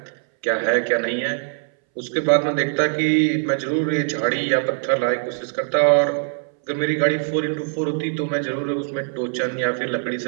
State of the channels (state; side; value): silent; left; 62 dB below the other